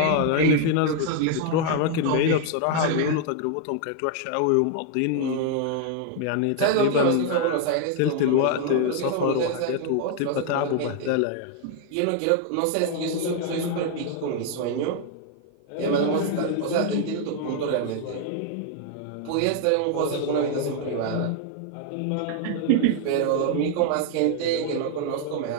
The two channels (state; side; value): different; both; correlation 0.00